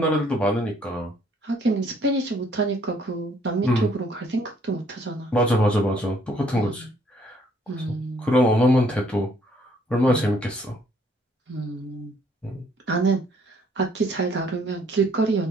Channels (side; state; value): both; normal; correlation 0.64